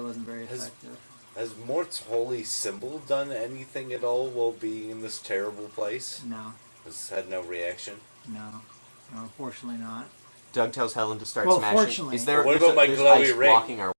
wasn't very effective. Has Mort's holy symbol done anything at all while being in this terrible place? No, Has had no reaction? no, unfortunately not. Doug tells Helen to start Well, smashing. fortunately. Is there? What there's about my there's glowy ice ring? blocking our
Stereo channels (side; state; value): both; inverted; correlation -1.00